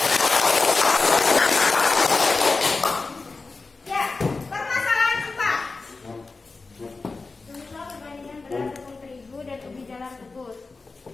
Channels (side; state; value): right; quieter; 3.9 dB